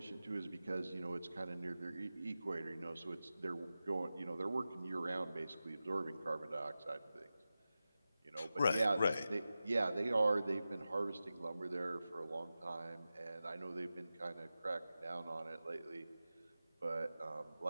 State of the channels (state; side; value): inverted; both; correlation -0.94